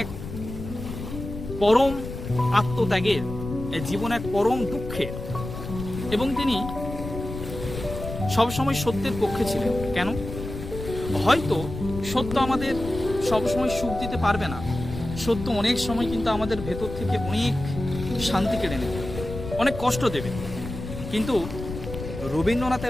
এক পরম আত্মত্যাগের, এই জীবন এক পরম দুঃখের। এবং তিনি সবসময় সত্যের পক্ষে ছিলেন। কেন? হয়তো সত্য আমাদের সবসময় সুখ দিতে পারবে না, সত্য অনেক সময় কিন্তু আমাদের ভেতর থেকে অনেক শান্তি কেড়ে নেবে, অনেক কষ্ট দেবে, কিন্তু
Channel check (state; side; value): noise; left; rumble, 9 dB below the sound